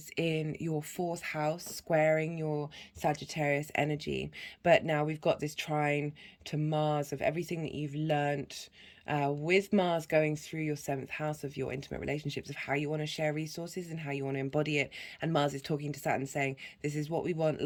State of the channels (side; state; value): both; identical; correlation 1.00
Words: in your 4th house, squaring your Sagittarius energy. But now we've got this trine to Mars of everything that you've learnt with Mars going through your 7th house of your intimate relationships, of how you want to share resources and how you want to embody it. And Mars is talking to Saturn saying, this is what we want,